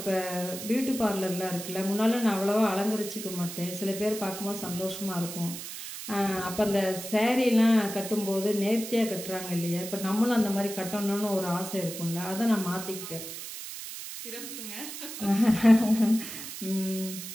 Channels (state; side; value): noise; right; hiss, 9 dB below the sound